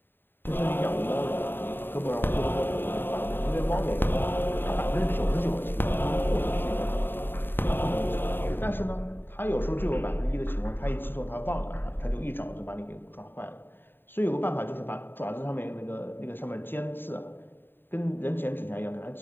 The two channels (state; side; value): late; right; 0.098 ms